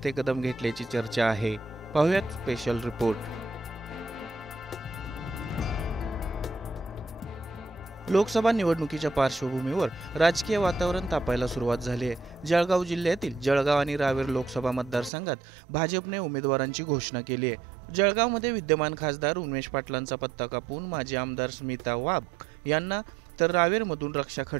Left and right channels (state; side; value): drops out; left; at 15.1 s